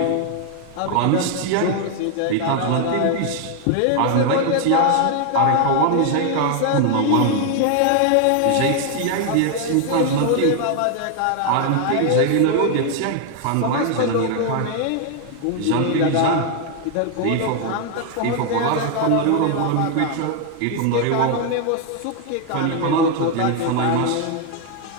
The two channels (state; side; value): different; both; correlation 0.00